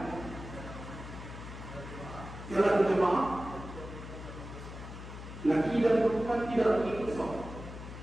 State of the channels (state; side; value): noise; left; hum, 11 dB below the sound